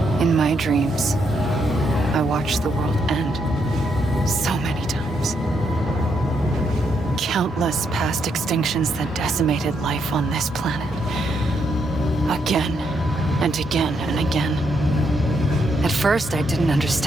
In my dreams, I watched the world end so many times. Countless past extinctions that decimated life on this planet. Again and again and again. At first, I didn't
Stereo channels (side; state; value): both; normal; correlation 0.77